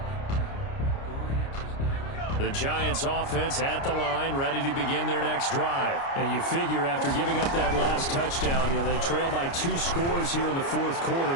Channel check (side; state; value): right; late; 29 ms